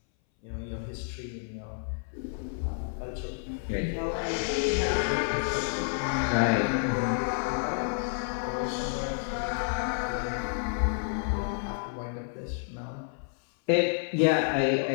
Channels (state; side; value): silent; right; 58 dB below the other